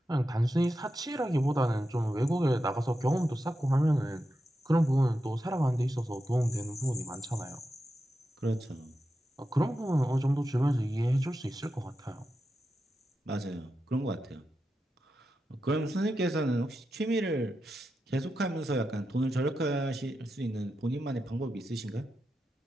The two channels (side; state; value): both; normal; correlation 0.89